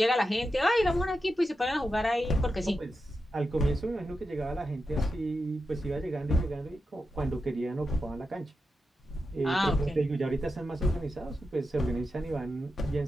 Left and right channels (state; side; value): normal; both; correlation 0.89